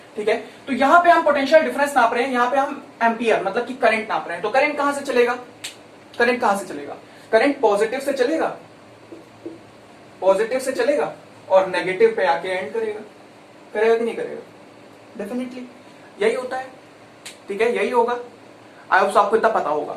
ठीक है। तो यहां पे हम पोटेंशियल डिफरेंस नाप रहे हैं, यहां पे हम एम्पियर मतलब कि करंट नाप रहे हैं। तो करंट कहां से चलेगा, करंट कहां से चलेगा, करंट पॉजिटिव से चलेगा, पॉजिटिव से चलेगा और नेगेटिव पे आके एंड करेगा, करेगा कि नहीं करेगा, डेफिनेटली यही होता है, ठीक है, यही होगा। आई होप आपको इतना पता होगा।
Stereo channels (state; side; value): identical; both; correlation 1.00